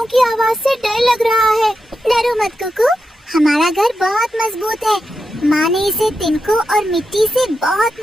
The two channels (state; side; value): normal; both; correlation 0.88